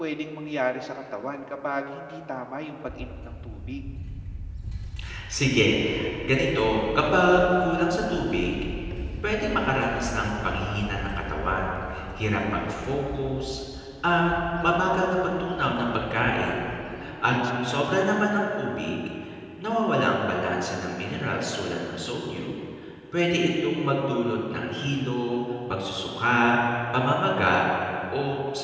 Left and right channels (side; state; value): both; identical; correlation 1.00